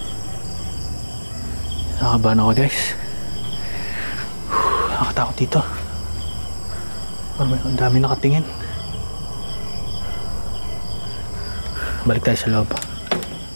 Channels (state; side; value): inverted; both; correlation -1.00